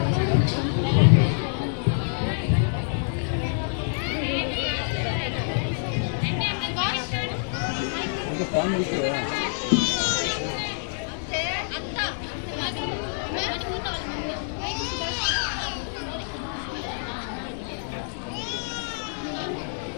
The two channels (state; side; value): silent; right; 61 dB below the other